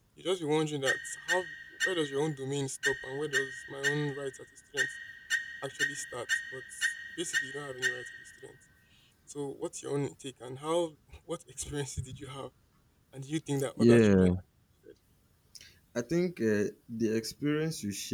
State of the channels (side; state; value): both; identical; correlation 1.00